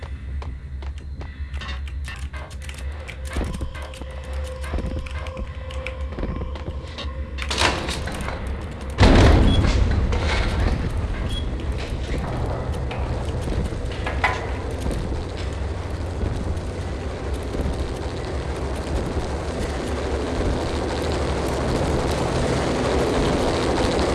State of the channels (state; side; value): identical; both; correlation 1.00